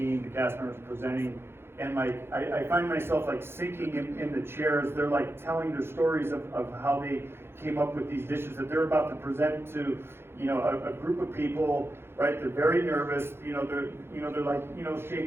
the cast members presenting, and I find myself sinking in the chairs. They're telling their stories of how they came up with these dishes that they're about to present to a group of people. Right, they're very nervous. They're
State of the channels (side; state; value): left; late; 0.11 ms